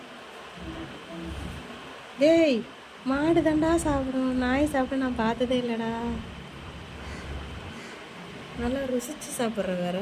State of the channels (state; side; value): identical; both; correlation 1.00